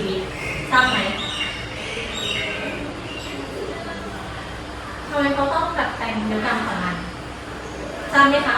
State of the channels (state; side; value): identical; both; correlation 1.00